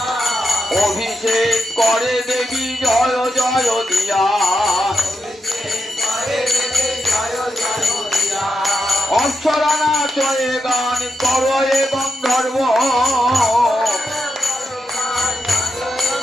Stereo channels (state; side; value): normal; both; correlation 0.85